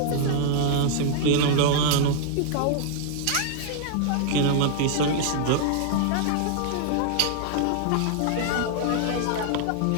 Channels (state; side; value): different; both; correlation 0.00